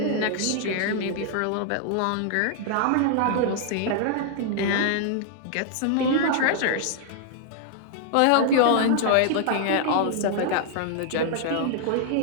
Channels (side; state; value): both; different; correlation -0.01